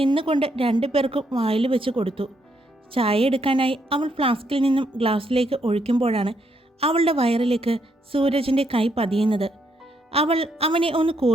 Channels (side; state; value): both; normal; correlation 0.75